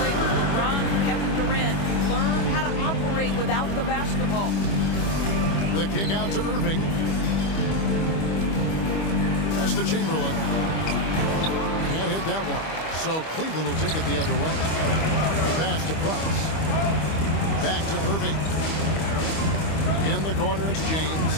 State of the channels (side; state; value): right; late; 25 ms